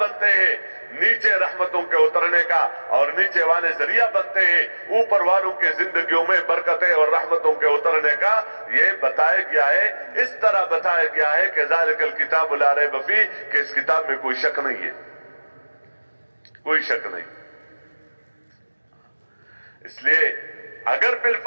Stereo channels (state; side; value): inverted; both; correlation -1.00